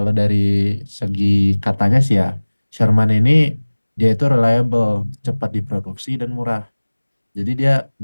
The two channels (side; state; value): both; inverted; correlation -1.00